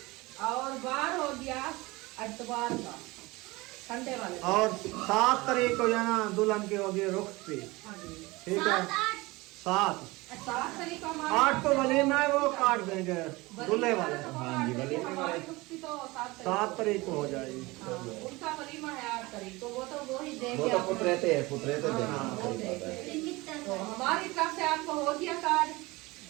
और बार हो गया अतवार का संडे वाले दिन। और 7 तारीख को जाना दुल्हन की होगी रुखसती, हाँ जी। ठीक है? 7 7 तारीख को 8 को वलीमा है, वो काट देंगे दूल्हे वाले। हाँ जी, वलीमे हमारी वाले। रुखसती तो 7 तारीख को हो जाएगी। हाँ, उनका वलीमा है 8 तारीख को, वो तो वो ही देंगे वो तो आपको। पुतरेते हैं, पुतरेते हाँ, देना वो देंगे। तो हमारी तरफ से आपको हो गया कार्ड।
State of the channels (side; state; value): left; quieter; 22.2 dB